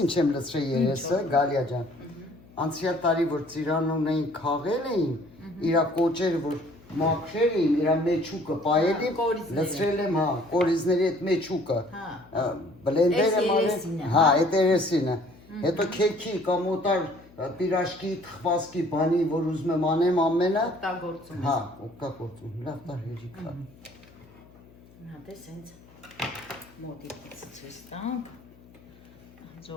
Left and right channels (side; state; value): left; noise; hum, 25 dB below the sound